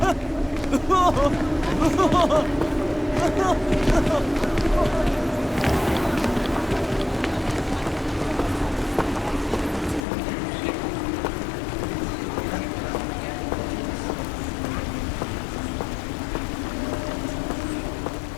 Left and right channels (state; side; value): drops out; right; at 10.0 s